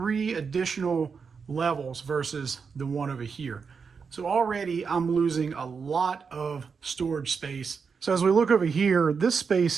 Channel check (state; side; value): quieter; left; 5.7 dB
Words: additional levels versus the one over here. So already I'm losing a lot of storage space. So as we look over here, this